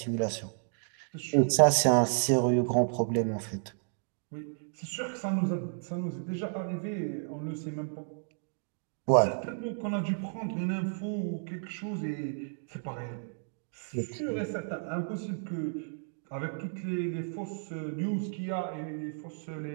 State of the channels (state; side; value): silent; left; digital silence